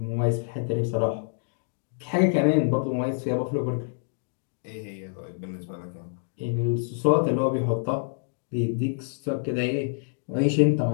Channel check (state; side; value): silent; right; digital silence